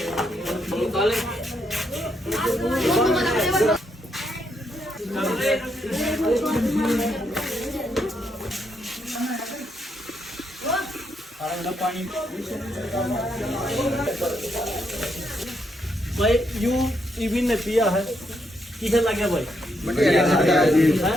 पानी भाई यू इविन ने पिया है, किसे लगे भाई? बढ़िया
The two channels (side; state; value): both; normal; correlation 0.78